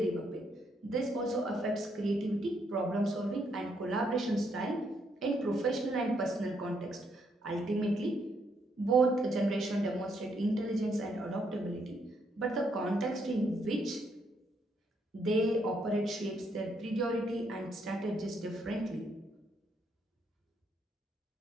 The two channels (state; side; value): normal; both; correlation 0.74